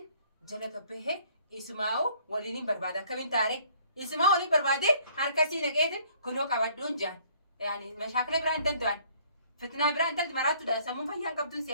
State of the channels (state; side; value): inverted; both; correlation -0.59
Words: jala gabbahee isumaa'u waliin hin barbaada akkamiin taare. Isuma waliin barbaadee harkasii naqeetiin kunoo qabadduun jaan. Yaani mashaakila biraa hin danda'an. Fitnaa biraa intalli maraattuudha. Sammuun fayyaan qabduun